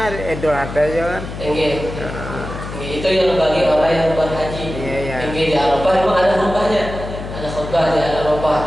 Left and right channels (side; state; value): left; noise; hum, 9 dB below the sound